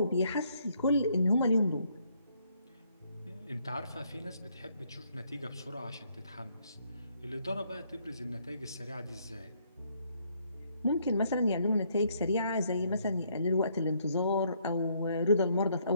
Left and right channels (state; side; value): inverted; both; correlation -0.70